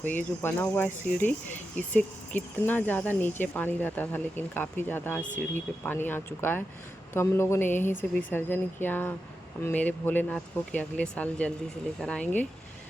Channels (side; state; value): both; normal; correlation 0.89